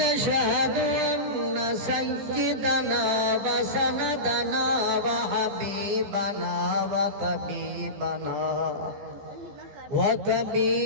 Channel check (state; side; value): late; left; 15 ms